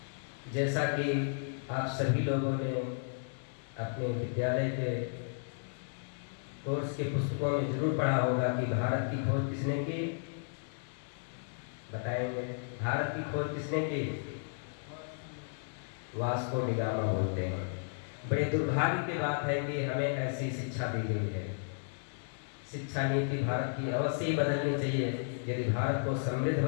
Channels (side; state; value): right; silent; digital silence